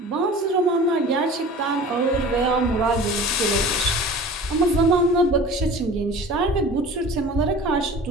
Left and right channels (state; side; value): normal; both; correlation 0.41